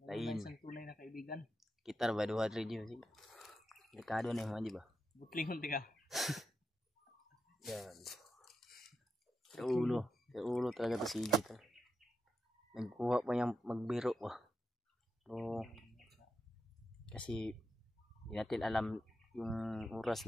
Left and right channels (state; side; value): normal; both; correlation 0.87